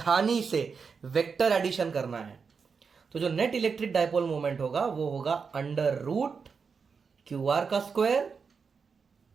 से वेक्टर एडिशन करना है। तो जो नेट इलेक्ट्रिक डायपोल मोमेंट होगा वो होगा अंडर रूट क्यू आर का स्क्वायर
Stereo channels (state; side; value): quieter; left; 5.5 dB